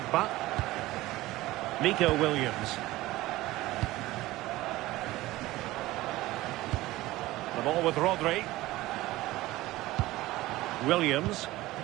Nico Williams. The ball with Rodri. Williams.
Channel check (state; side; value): quieter; left; 17.9 dB